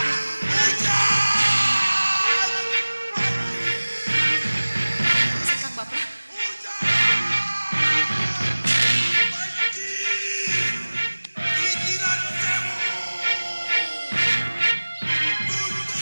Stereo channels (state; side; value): inverted; both; correlation -1.00